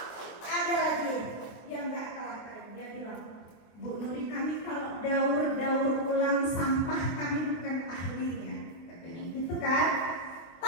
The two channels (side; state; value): right; late; 24 ms